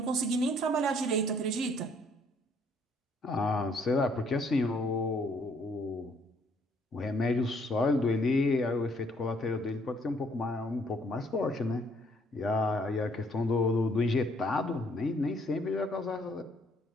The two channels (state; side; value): normal; both; correlation 0.65